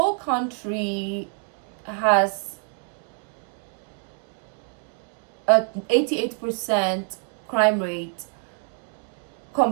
country has a 88% crime rate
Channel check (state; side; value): quieter; left; 39.7 dB